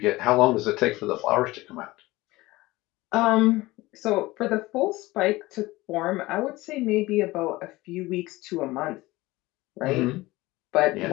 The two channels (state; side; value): quieter; right; 19.7 dB